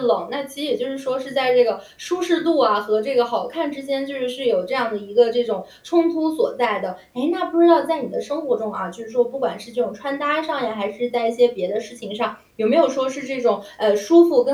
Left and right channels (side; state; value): both; identical; correlation 1.00